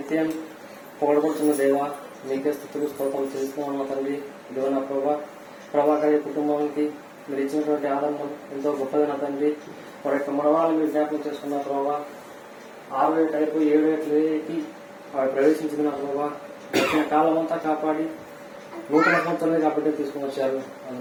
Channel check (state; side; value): identical; both; correlation 1.00